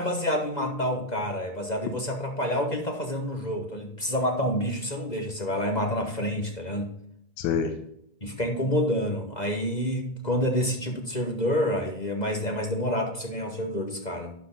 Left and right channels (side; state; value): right; late; 2.0 ms